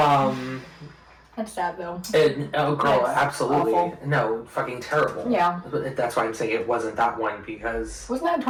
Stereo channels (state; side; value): identical; both; correlation 1.00